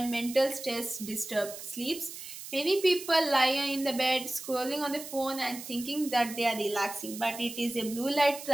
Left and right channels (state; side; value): noise; right; hiss, 11 dB below the sound